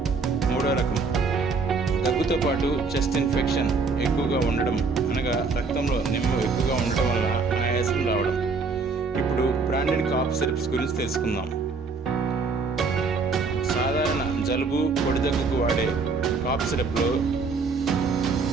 3వ రకం దగ్గుతో పాటు చెస్ట్ ఇన్ఫెక్షన్ ఎక్కువగా ఉండడం, అనగా రక్తంలో నిమ్మ ఎక్కువగా ఉండటం వల్ల ఆయాసం రావడం. ఇప్పుడు బ్రాండెడ్ కాఫ్ సిరప్స్ గురించి తెలుసుకుందాం. సాధారణ జలుబు, పొడి దగ్గుకు వాడే కాఫ్ సిరప్లో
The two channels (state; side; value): quieter; left; 4.5 dB